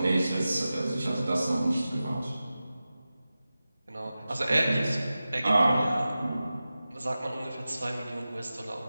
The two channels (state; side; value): inverted; both; correlation -0.95